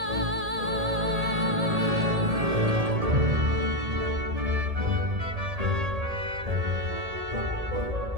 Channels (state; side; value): late; left; 1.8 ms